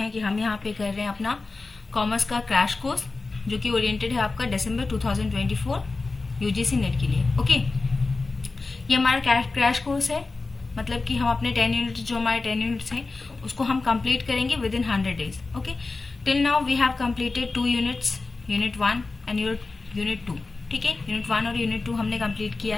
कि हम यहाँ पे कर रहे हैं अपना कॉमर्स का क्रैश कोर्स, जो कि ओरिएंटेड है आपका दिसंबर 2024 यूजीसी नेट के लिए। ओके, ये हमारा क्रैश कोर्स है, मतलब कि हम अपने 10 यूनिट्स, जो हमारे 10 यूनिट्स हैं, उसको हम कंप्लीट करेंगे within 100 days. Okay, till now we have completed 2 units, unit 1 and unit 2। ठीक है, यूनिट 1 और यूनिट 2 हमने कंप्लीट किया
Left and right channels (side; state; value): right; quieter; 3.7 dB